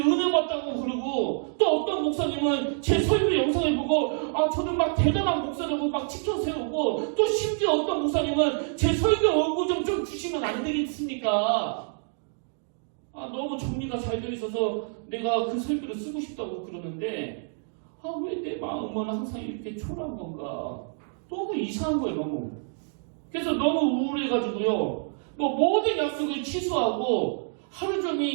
받다고 그러고 또 어떤 목사님은 제 설교 영상을 보고 저는 막 대단한 목사라고 막 치켜 세우고 또 심지어 어떤 목사님은 제 설교 원고 좀 주시면 안 되겠습니까? 너무 정리가 잘 되어 있어서 내가 그 설교를 쓰고 싶다고 그러는데 왜 내 마음은 항상 이렇게 초라한 건가? 너무 이상한 거예요, 너무. 그래서 너무 우울해가지고요. 뭐 모든 약속을 취소하고 하루 종일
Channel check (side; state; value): left; silent; 57 dB below the other